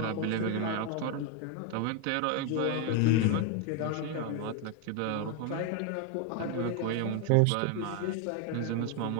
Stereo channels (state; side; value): different; both; correlation 0.01